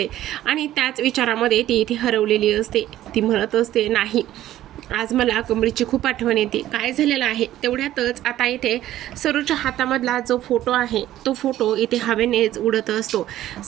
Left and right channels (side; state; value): left; quieter; 13.5 dB